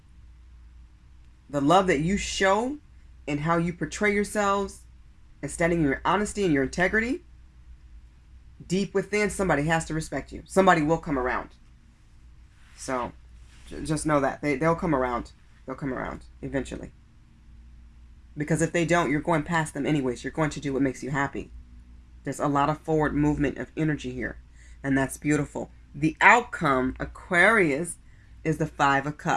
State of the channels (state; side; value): identical; both; correlation 1.00